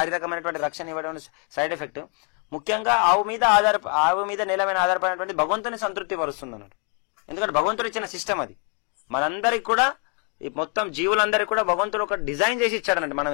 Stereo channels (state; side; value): quieter; right; 38.9 dB